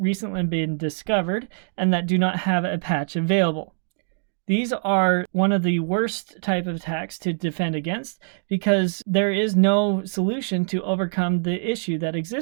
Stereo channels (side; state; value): left; silent; digital silence